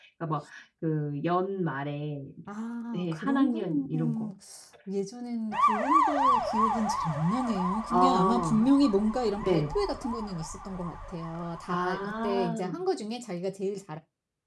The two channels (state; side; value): identical; both; correlation 1.00